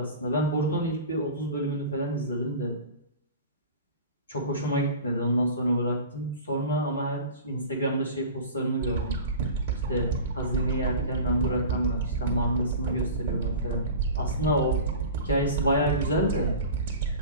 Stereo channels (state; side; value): inverted; both; correlation -0.36